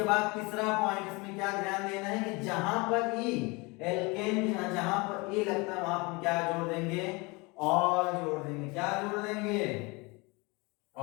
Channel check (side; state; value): right; quieter; 26.5 dB